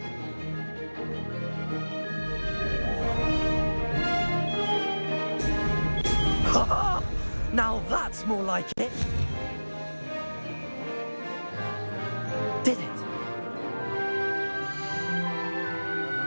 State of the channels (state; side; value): inverted; both; correlation -1.00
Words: that's more like it. Did it?